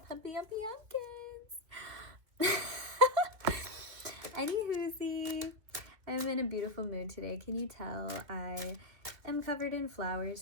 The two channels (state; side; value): late; left; 2.7 ms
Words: yumpy, yumpkins. Anywhoosie, I'm in a beautiful mood today. Can you tell? I am covered in